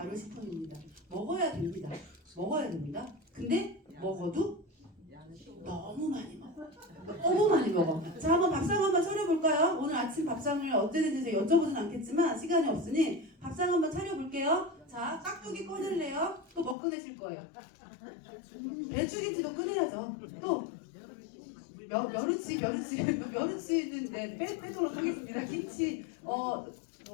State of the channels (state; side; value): drops out; right; at 16.8 s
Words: 먹어야 됩니다. 먹어야 됩니다. 근데 먹어도 너무 많이 먹어. 너무 많이 먹어. 자, 한번 밥상 한번 차려볼까요? 오늘 아침 밥상을 어땠는지 여쭤보진 않겠지만 시간이 없으니 밥상 한번 차려볼게요. 자, 깍두기 꺼낼래요? 또 뭐 꺼내실 거예요? 배추김치도 꺼내야죠. 또 멸치는 빼도록 하겠습니다. 김치,